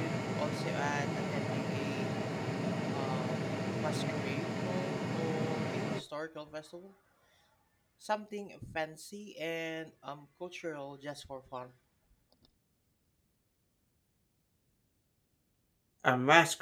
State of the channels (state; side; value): identical; both; correlation 1.00